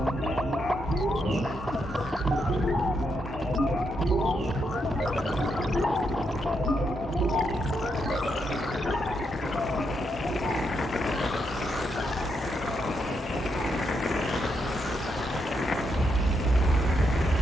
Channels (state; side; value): normal; both; correlation 0.80